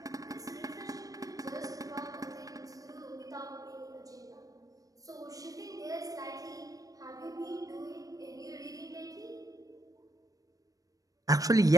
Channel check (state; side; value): late; left; 0.17 ms